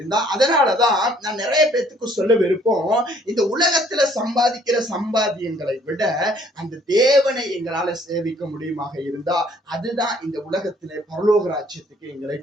அதனாலதான் நான் நிறைய பேத்துக்கு சொல்ல விருப்பம், இந்த உலகத்துல சம்பாதிக்கிற சம்பாத்தியங்களை விட அந்த தேவனை எங்களால சேவிக்க முடியுமாக இருந்தா, அதுதான் இந்த உலகத்திலே பரலோக ராஜ்யத்துக்கு எங்களை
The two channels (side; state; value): both; normal; correlation 0.61